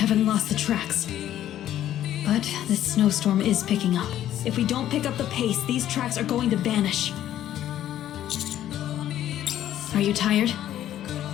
lost the tracks. But this snowstorm is picking up. If we don't pick up the pace, these tracks are going to vanish. Are you tired?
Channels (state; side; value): quieter; right; 12.0 dB